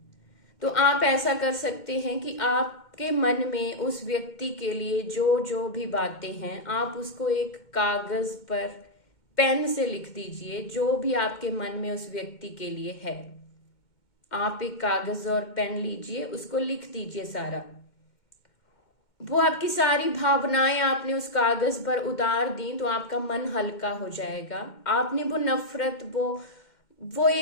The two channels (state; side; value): late; right; 2.1 ms